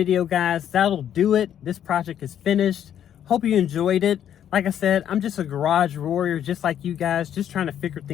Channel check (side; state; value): right; quieter; 9.9 dB